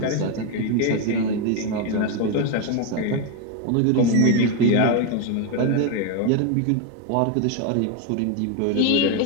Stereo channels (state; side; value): different; both; correlation 0.01